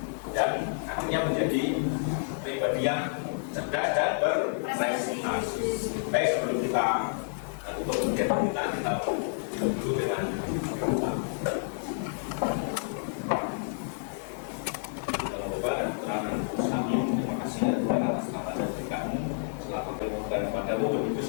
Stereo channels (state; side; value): silent; right; 58 dB below the other